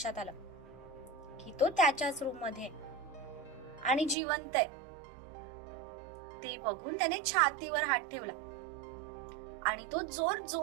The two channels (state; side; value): drops out; left; at 4.2 s